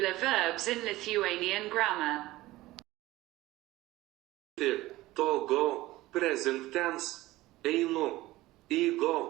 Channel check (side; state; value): left; quieter; 17.8 dB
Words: verbs in Lithuanian grammar. To go, present tense, einu,